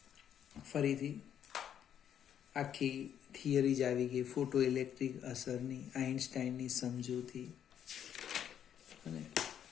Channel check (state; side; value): quieter; right; 9.4 dB